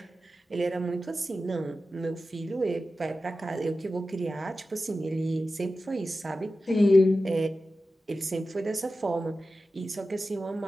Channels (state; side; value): normal; both; correlation 0.93